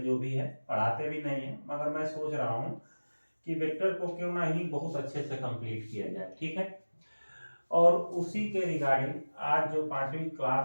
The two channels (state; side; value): inverted; both; correlation -1.00